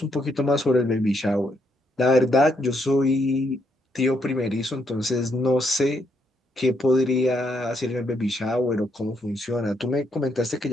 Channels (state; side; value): normal; both; correlation 0.75